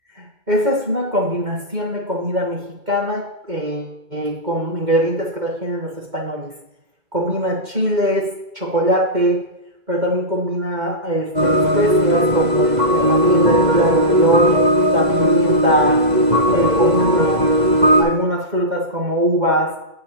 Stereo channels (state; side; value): late; left; 2.0 ms